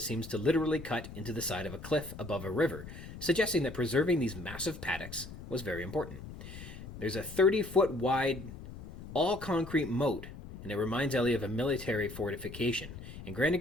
seems to literally cut into the side of a cliff above a river, suggesting that preserving these massive paddocks was very important. There's a 30-foot wide, all-concrete moat, and it reminds Ellie of a military fortification. And Grant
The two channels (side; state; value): left; noise; rumble, 13 dB below the sound